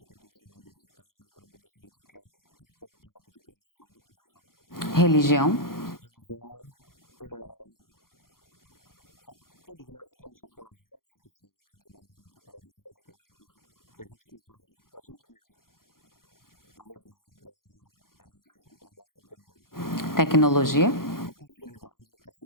tem que ter uma família estável para poder se dedicar por completo, de coração, para a profissão. Religião. Religião todos nós temos aquela voz que fala dentro da gente, aquela voz que a gente conversa com a gente mesmo. A religião, para mim, é isso, é o nosso interior. Tecnologia. A possibilidade de estar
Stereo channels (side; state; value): right; late; 0.92 ms